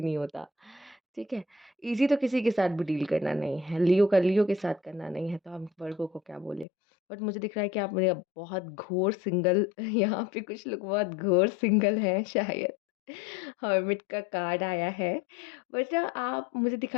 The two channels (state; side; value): drops out; right; at 6.7 s